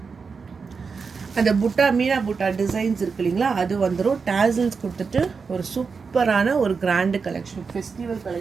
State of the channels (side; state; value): left; quieter; 5.2 dB